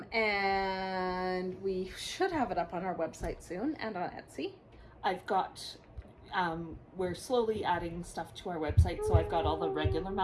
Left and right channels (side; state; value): both; identical; correlation 1.00